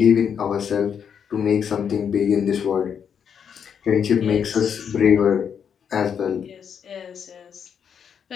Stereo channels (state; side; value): quieter; right; 7.6 dB